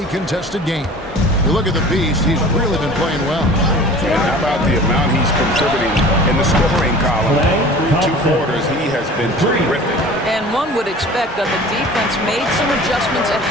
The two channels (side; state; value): both; normal; correlation 0.42